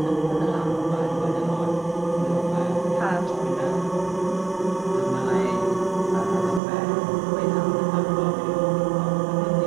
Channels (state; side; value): drops out; left; at 6.6 s